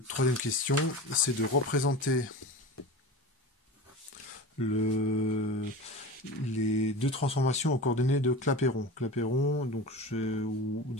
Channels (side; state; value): both; normal; correlation 0.31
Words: troisième question, c'est de représenter les deux transformations aux coordonnées de Clapeyron. Clapeyron, donc ou